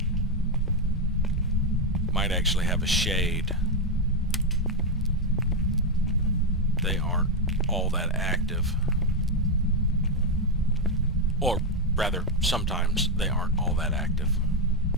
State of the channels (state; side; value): normal; both; correlation 0.04